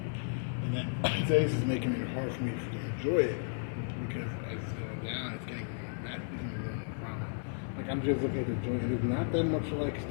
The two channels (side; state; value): right; silent; digital silence